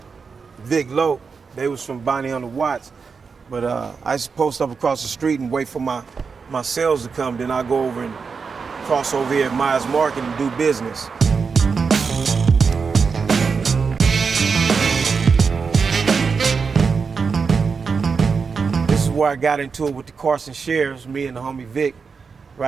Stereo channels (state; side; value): quieter; left; 5.3 dB